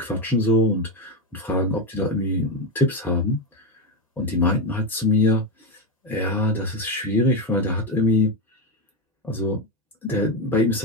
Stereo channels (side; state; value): both; normal; correlation 0.11